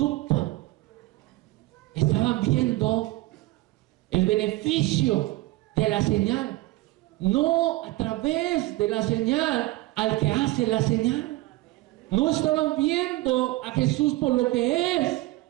Estaban viendo el beneficio de la señal. No a través de la señal al que hace la señal. No estaban viendo a Jesús por lo que es.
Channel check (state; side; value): quieter; left; 18.7 dB